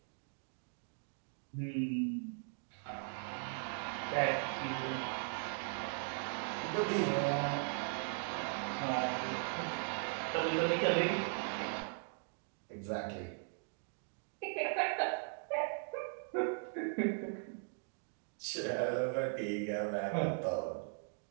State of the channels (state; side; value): silent; left; 52 dB below the other